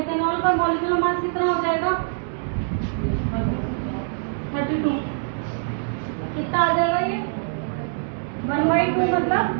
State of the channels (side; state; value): left; silent; digital silence